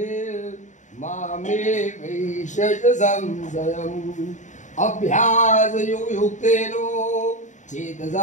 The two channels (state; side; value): late; right; 0.36 ms